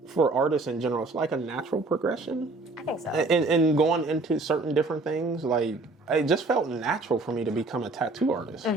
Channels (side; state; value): left; quieter; 3.3 dB